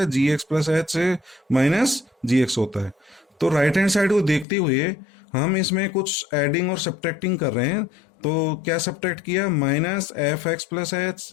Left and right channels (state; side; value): drops out; right; at 4.5 s